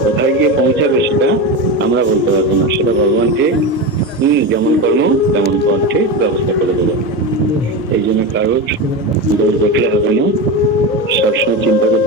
কোথায় গিয়ে পৌঁছাবে সেটা আমরা বলতে পারবো না। সেটা ভগবান ঠিক যেমন কর্ম তেমন ফল ঠিক ব্যবস্থা করে দেবে। এই জন্য কারোর দোষ দেখলে হবে না, সবসময় চিন্তা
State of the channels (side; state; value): both; normal; correlation 0.20